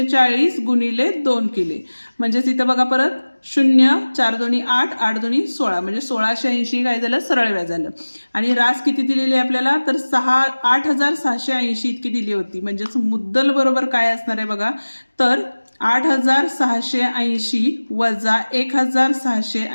गुणिले 2 केले म्हणजेच इथं बघा परत 0 4 दोन्ही 8 8 दोन्ही 16 म्हणजे 1680 काय झालं सरळ व्याज झालं. आणि रास किती दिलेली आहे आपल्याला तर 8,680 इतकी दिली होती. म्हणजेच मुद्दल बरोबर काय असणार आहे बघा तर 8,680 वजा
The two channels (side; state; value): both; inverted; correlation -1.00